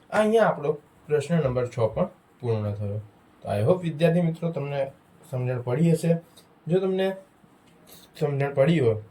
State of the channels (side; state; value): both; identical; correlation 1.00